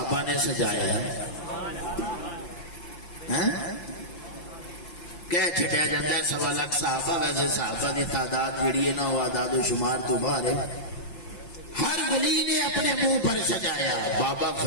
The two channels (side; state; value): right; late; 5.8 ms